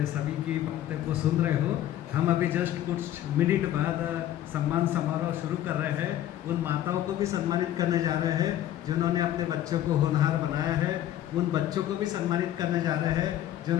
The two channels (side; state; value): right; quieter; 12.3 dB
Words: सभी की बातें को सुन रहे हो। हम अभी जस्ट कुछ मिनट बाद सम्मान समारोह शुरू कर रहे हैं। उन माताओं को भी सम्मानित करने जा रहे हैं जिन्होंने अपने बच्चों को होनहार बनाया है। उन बच्चों को भी सम्मानित करने जा रहे हैं